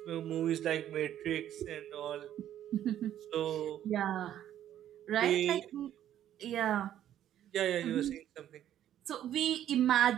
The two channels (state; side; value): quieter; left; 11.3 dB